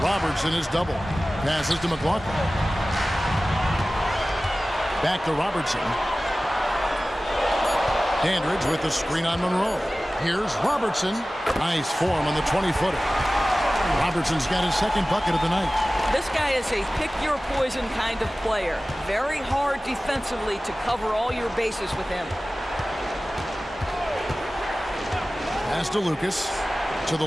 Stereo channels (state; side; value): normal; both; correlation 0.97